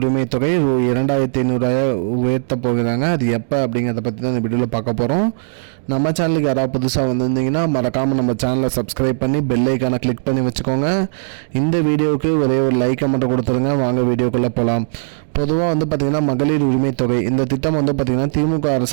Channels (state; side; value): silent; left; digital silence